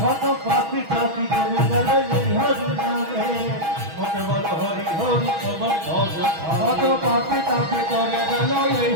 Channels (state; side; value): late; left; 6.2 ms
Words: কত পাপি টাপি করে গেল এই হরি নামে মতে বল হরি হরি তোমার ভজ কত পাপে তাপে করে গেল এই